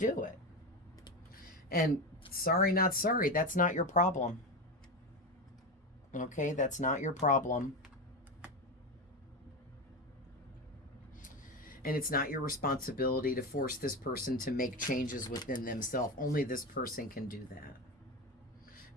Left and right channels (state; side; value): normal; both; correlation 0.18